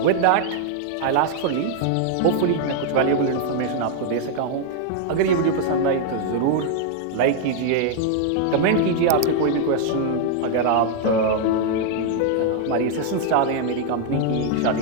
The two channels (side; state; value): both; different; correlation 0.00